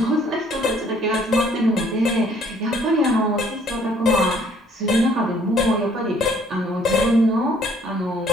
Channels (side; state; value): both; normal; correlation 0.61